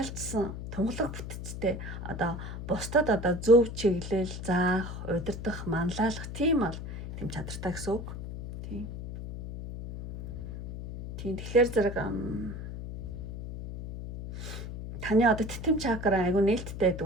тунгалаг бүтцтэй одоо бусдад одоо зөв чиглэл заах, удирдах, манлайлах тийм бол тийм чадртай гэсэн үг. Тийм. Тэгэхээр зэрэг таны одоо титэм чакра айгу нээлттэй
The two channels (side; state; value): left; noise; hum, 8 dB below the sound